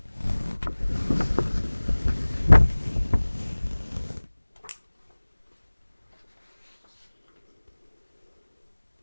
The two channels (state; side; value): inverted; both; correlation -1.00